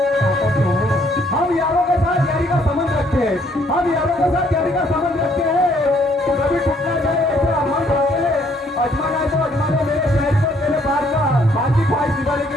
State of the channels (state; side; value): normal; both; correlation 0.66